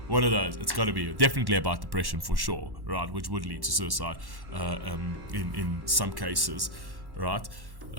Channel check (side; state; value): left; late; 1.1 ms